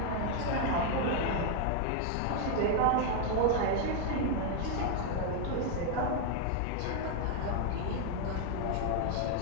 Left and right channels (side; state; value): both; different; correlation 0.01